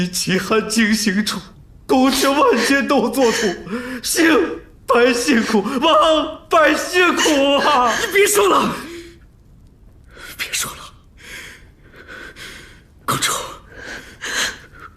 奇汉经行处，宫阙万千都作土，兴百姓苦，亡百姓苦啊！你别说了，别说了，公主，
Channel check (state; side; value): identical; both; correlation 1.00